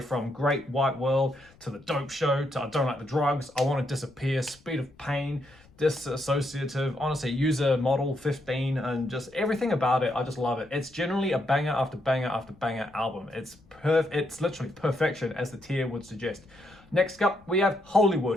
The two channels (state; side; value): noise; left; rumble, 28 dB below the sound